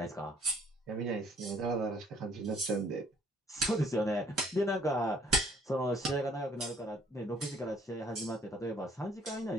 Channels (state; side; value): normal; both; correlation 0.61